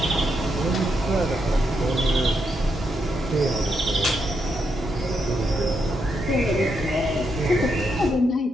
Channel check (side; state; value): both; normal; correlation 0.81